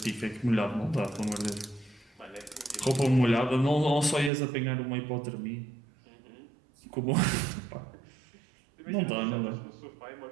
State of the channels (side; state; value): left; drops out; at 4.3 s